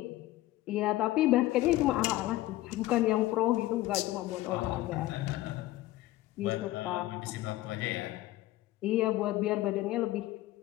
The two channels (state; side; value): quieter; right; 16.6 dB